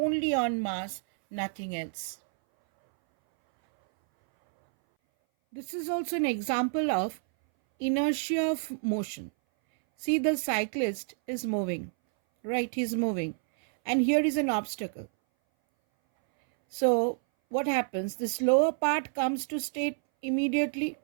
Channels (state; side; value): silent; left; 59 dB below the other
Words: on mass, nothing else. This is also an example of inertia of motion. See, the cyclist is moving, right? He's moving. And here is an obstacle. So what happens? This lower part comes to stop immediately,